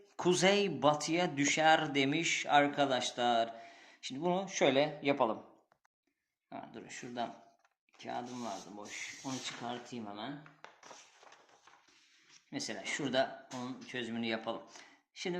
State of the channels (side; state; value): both; identical; correlation 1.00